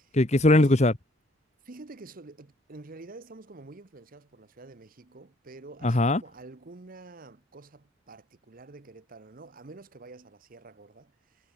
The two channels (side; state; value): both; normal; correlation 0.63